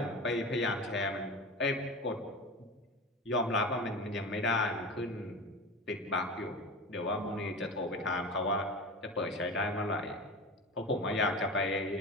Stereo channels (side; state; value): both; normal; correlation 0.30